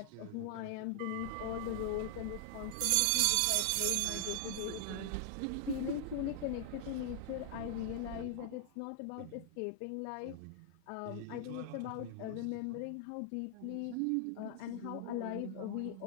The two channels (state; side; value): different; both; correlation -0.01